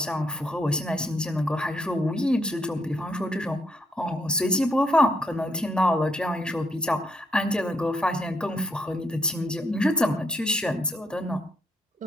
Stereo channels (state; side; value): normal; both; correlation 0.75